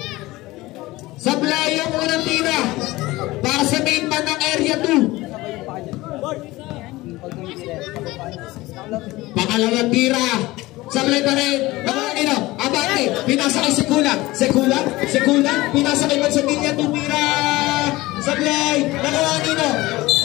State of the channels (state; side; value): quieter; right; 19.4 dB